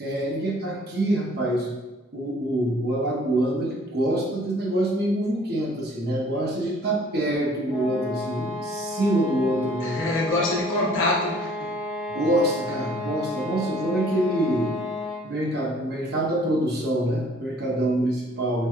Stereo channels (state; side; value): normal; both; correlation 0.56